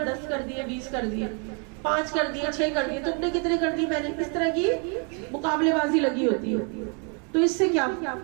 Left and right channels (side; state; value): left; quieter; 37.2 dB